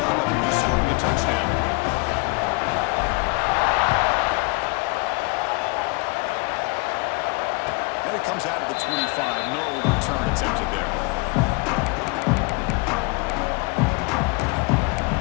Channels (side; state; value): right; quieter; 28.3 dB